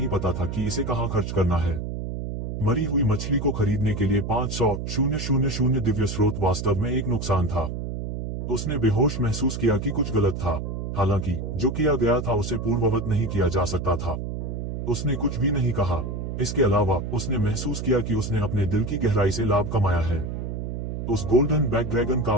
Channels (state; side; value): noise; right; hum, 5 dB below the sound